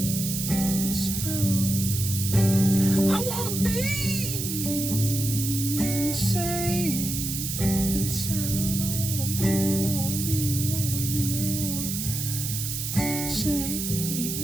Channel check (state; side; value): noise; right; hiss, 3 dB below the sound